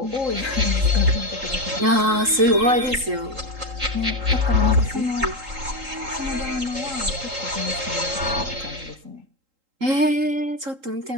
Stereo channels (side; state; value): left; late; 3.8 ms